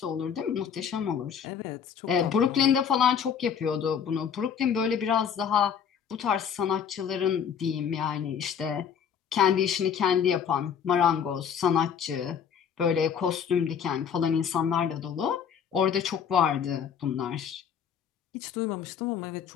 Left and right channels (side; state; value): right; quieter; 7.7 dB